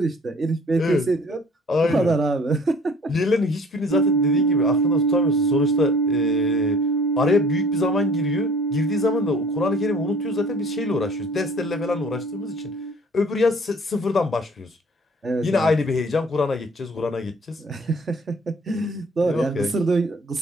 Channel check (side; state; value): both; normal; correlation 0.52